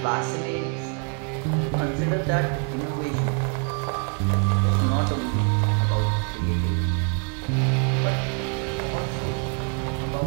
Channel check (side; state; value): left; quieter; 36.3 dB